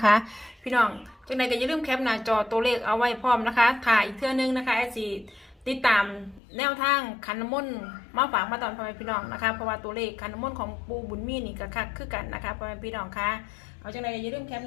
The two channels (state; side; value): drops out; right; at 6.4 s